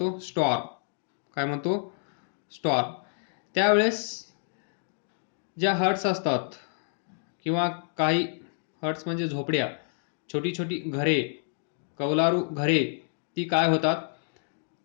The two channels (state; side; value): silent; right; digital silence